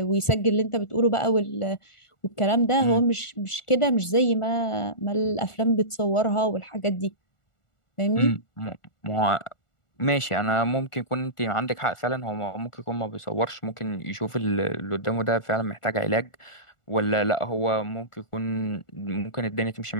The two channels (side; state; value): right; late; 1.4 ms